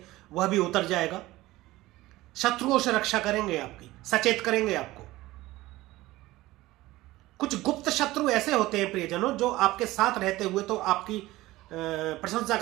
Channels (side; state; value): left; quieter; 17.9 dB